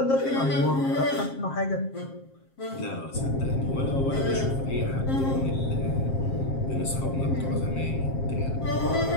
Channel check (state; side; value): late; right; 7.5 ms